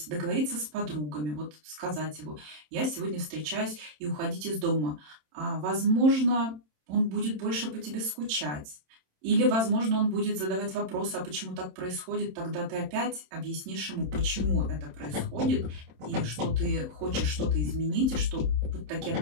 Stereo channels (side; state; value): left; late; 27 ms